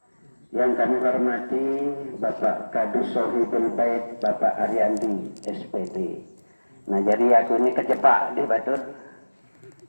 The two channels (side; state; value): both; inverted; correlation -1.00